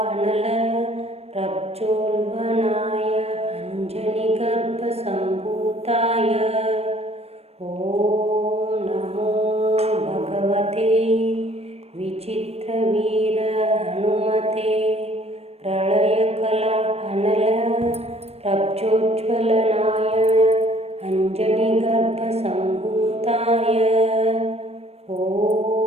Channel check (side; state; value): left; late; 0.30 ms